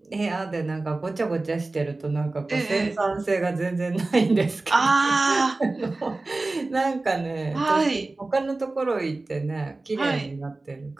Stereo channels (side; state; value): left; quieter; 3.2 dB